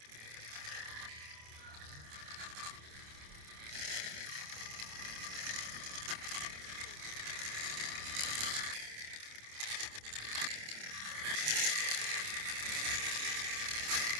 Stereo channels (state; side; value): late; left; 27 ms